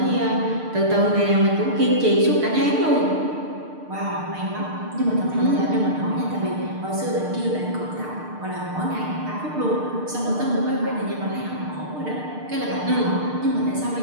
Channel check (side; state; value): left; late; 6.6 ms